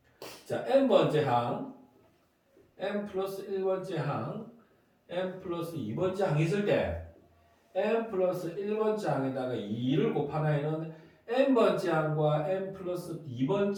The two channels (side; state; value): both; identical; correlation 1.00